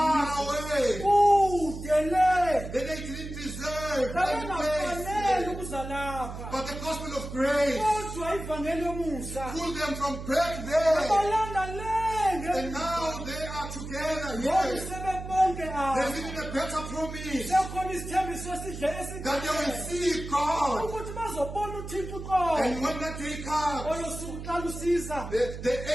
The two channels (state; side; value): noise; right; hum, 9 dB below the sound